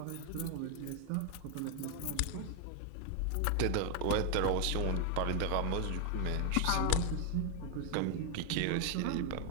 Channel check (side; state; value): both; different; correlation 0.01